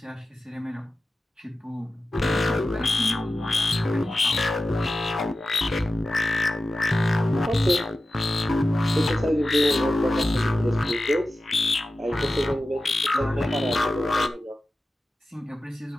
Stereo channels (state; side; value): normal; both; correlation 0.94